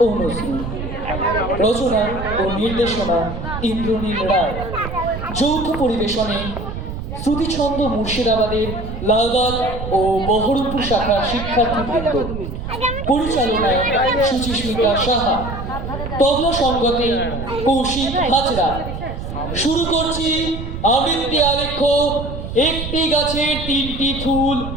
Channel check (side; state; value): right; noise; rumble, 7 dB below the sound